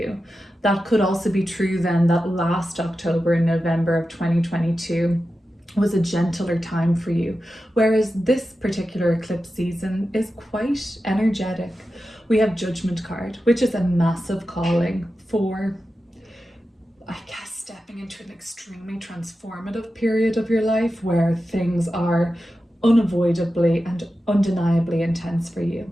That could also be true then that last October and November of 2022 was a gentler time for you. Whereas this particular eclipse season is quite energetic. We have Judgment card, which is a massive calling for, I guess, stepping into an extremely transformative period of your life where things are unavoidably and undeniably intense for you.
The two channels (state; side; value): normal; both; correlation 0.92